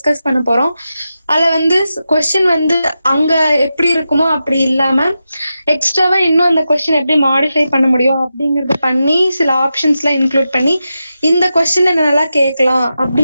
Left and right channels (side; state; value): both; inverted; correlation -0.90